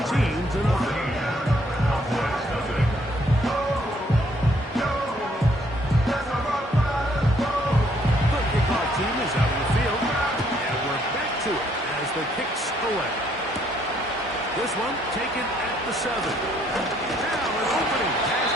The kickoff team is out in the field, and we're back to it as the kicks away. This one taken at the 7. Now an opening past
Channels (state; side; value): normal; both; correlation 0.67